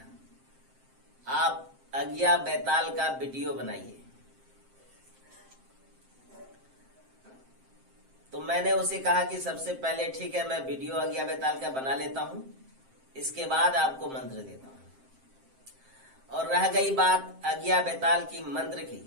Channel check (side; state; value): left; late; 7.6 ms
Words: आप आज्ञा बैताल का वीडियो बनाइए। तो मैंने उसे कहा कि सबसे पहले ठीक है, मैं वीडियो आज्ञा बैताल का बना लेता हूं, इसके बाद आपको मंत्र देता हूं। और रह गई बात आज्ञा बैताल की मंत्र की,